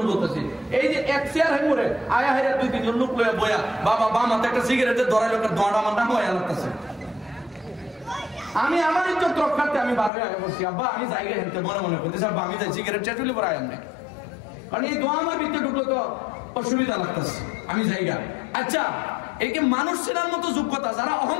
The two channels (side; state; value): right; drops out; at 10.1 s